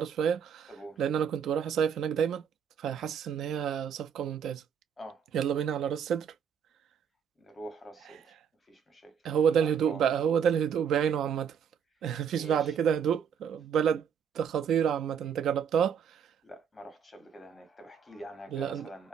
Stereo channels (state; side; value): quieter; left; 7.7 dB